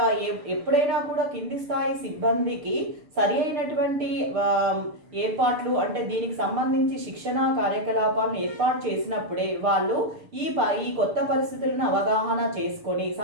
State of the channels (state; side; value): late; left; 6.6 ms